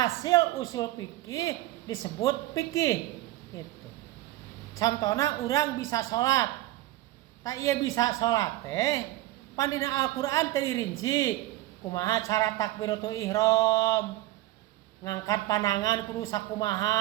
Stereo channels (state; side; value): quieter; left; 16.5 dB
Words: usul fikih disebut fikih gitu. Contohna urang bisa salat. Tak ieu bisa salat teh pan dina Al-Qur'an teh dirinci kumaha cara takbiratul ihram, ngangkat panangan kudu